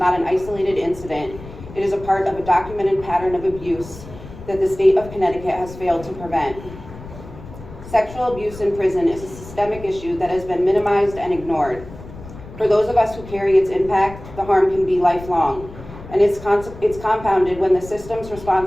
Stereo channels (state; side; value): noise; left; rumble, 15 dB below the sound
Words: an isolated incident. It is a part of a documented pattern of abuse that the state of Connecticut has failed to prevent. Sexual abuse in prison is a systemic issue that has been minimized and ignored. For those of us who carry its impact, the harm can be lifelong, and it's compounded when the systems